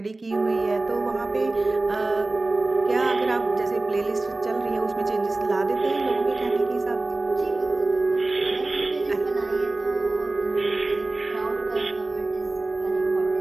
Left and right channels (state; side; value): quieter; left; 3.1 dB